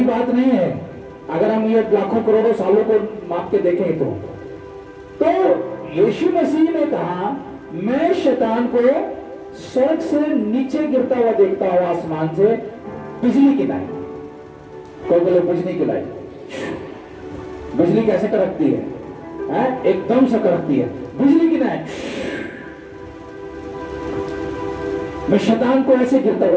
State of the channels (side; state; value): both; identical; correlation 1.00